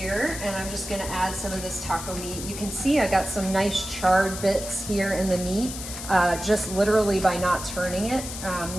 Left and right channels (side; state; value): left; noise; hiss, 9 dB below the sound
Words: and I'm just gonna add some of this taco meat. You can see I got some nice charred bits here in the meat, just literally by not turning it,